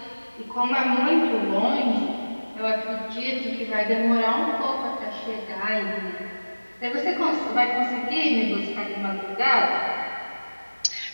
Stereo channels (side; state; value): both; inverted; correlation -1.00